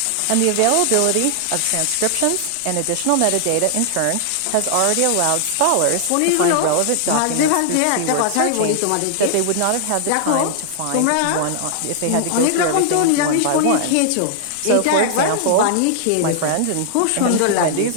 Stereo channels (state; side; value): different; both; correlation -0.01